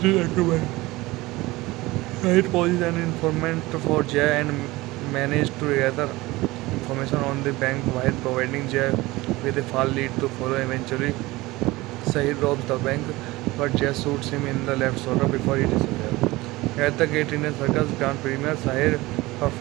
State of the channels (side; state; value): left; quieter; 20.2 dB